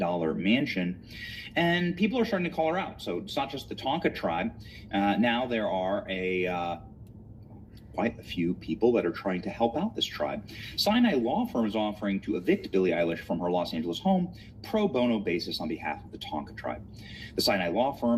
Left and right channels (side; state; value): both; identical; correlation 1.00